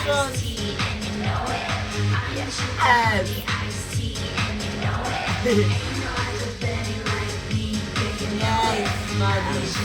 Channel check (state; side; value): identical; both; correlation 1.00